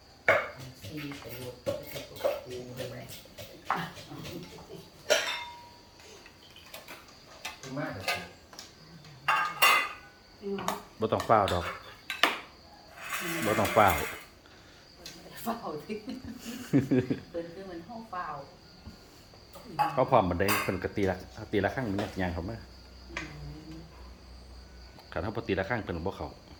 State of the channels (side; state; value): both; identical; correlation 1.00